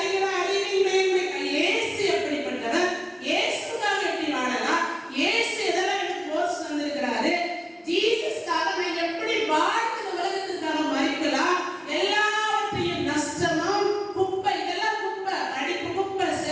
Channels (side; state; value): both; identical; correlation 1.00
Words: அறிவின் மேன்மை. இயேசு எப்படிப்பட்டவர்? இயேசுக்காக எப்படி வாழலாம்? இயேசு எதெல்லாம் எனக்கு கோர்ஸ் வந்திருக்கிறாரு? ஜீசஸ்க்காக நான் எப்படி வாழ்ந்து உலகத்துக்காக மறிக்கலாம்? எல்லாவற்றையும் நஷ்டமும் குப்பை. இதெல்லாம் குப்பை, படிப்பு குப்பை,